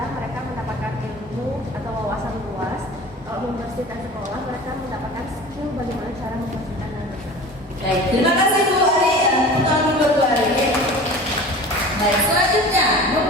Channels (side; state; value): both; normal; correlation 0.38